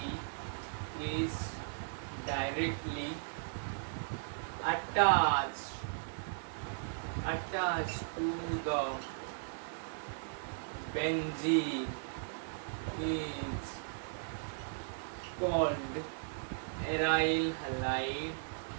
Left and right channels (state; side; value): silent; left; digital silence